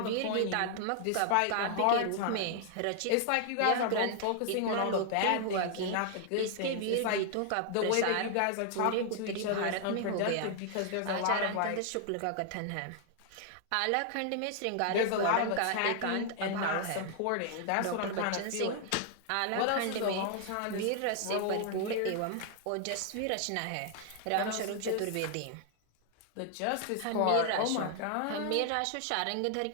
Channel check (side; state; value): both; different; correlation 0.00